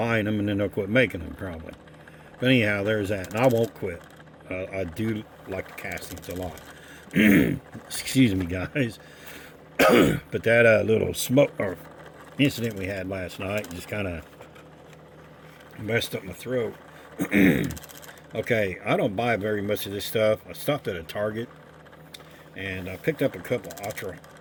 them and then they'll quit making them probably. But anyhow, there's that. And I won't quit. I do like the castings a lot. Excuse me, guys. But that little smoke or incident we had last night just kind of messed up my throat. Okay, I don't buy very much of this stuff. I stopped at a Target and I picked up a couple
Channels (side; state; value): both; identical; correlation 1.00